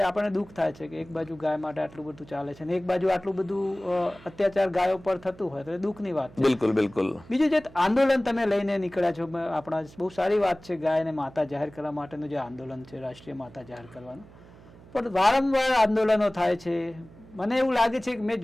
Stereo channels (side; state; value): right; noise; hum, 22 dB below the sound